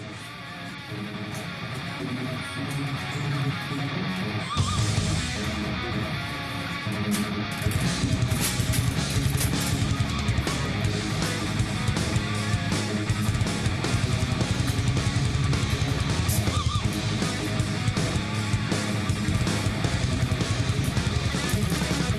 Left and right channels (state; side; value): identical; both; correlation 1.00